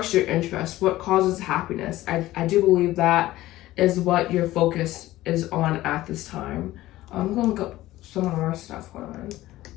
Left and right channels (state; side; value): quieter; right; 16.2 dB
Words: your interest, what causes happiness. I do believe that is what your focus is on at this time. I'm gonna go some more stuff